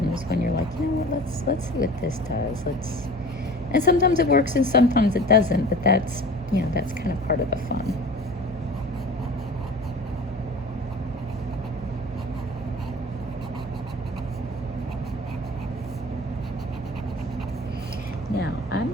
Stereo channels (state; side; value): normal; both; correlation 0.41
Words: is when you're like, let's see what this does. And sometimes it works and sometimes it doesn't, but that's kind of part of the fun. Now, I'm